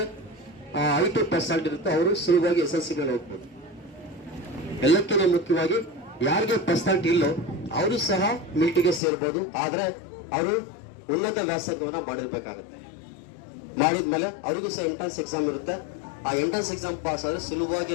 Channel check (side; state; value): right; drops out; at 9.0 s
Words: 5% ಇರುತ್ತೆ ಅವರು ಸುಲಭವಾಗಿ SSC ಮೇಲೆ ಹೋಗ್ಬೋದು. ಎಲ್ಲಕ್ಕಿಂತ ಮುಖ್ಯವಾಗಿ ಯಾರಿಗೆ ಪರ್ಸೆಂಟ್ ಇಲ್ಲೋ ಅವರು ಸಹ ಮಿಲಿಟರಿಗೆ ಸೇರ್ಬೋದು. ಆದ್ರೆ ಅವರು ಉನ್ನತ ವ್ಯಾಸಂಗವನ್ನ ಮಾಡಿರ್ಬೇಕಾಗುತ್ತೆ. ಮಾಡಿದ್ಮೇಲೆ ಅವರಿಗೂ ಸಹ ಎಂಟ್ರೆನ್ಸ್ ಎಕ್ಸಾಮ್ ಇರುತ್ತೆ. ಆ ಎಂಟ್ರೆನ್ಸ್ ಎಕ್ಸಾಮ್ ಪಾಸ್ ಆದ್ರೆ